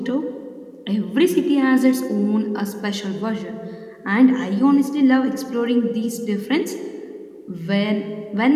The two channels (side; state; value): both; identical; correlation 1.00